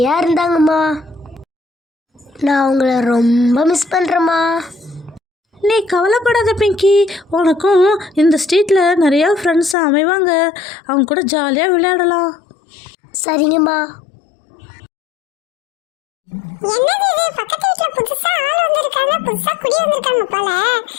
இருந்தாங்கம்மா. நான் அவங்கள ரொம்ப மிஸ் பண்ணுறேம்மா. நீ கவலைப்படாத பிங்கி, உனக்கும் இந்த ஸ்ட்ரீட்டில் நிறையா ஃப்ரெண்ட்ஸ் அமைவாங்க. அவங்க கூட ஜாலியாக விளையாடலாம். சரிங்கம்மா. என்னது இது? பக்கத்து வீட்டுல புதுசா ஆள் வந்திருக்காங்க, புதுசா குடி வந்திருக்காங்க போல.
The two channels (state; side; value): drops out; right; at 9.8 s